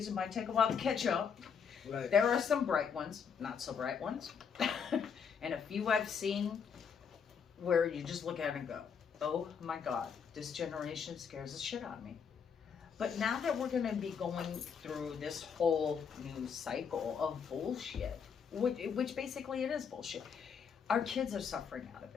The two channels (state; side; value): quieter; right; 6.7 dB